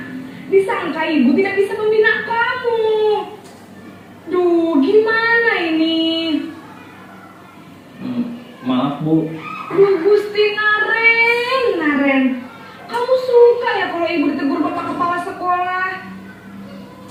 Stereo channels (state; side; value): identical; both; correlation 1.00